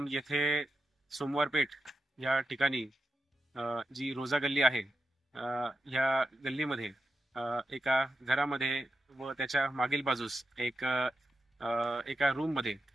येथे सोमवारपेठ या ठिकाणी जी रोजा गल्ली आहे या गल्लीमध्ये एका घरामध्ये व त्याच्या मागील बाजूस एका रूममध्ये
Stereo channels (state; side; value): normal; both; correlation 0.88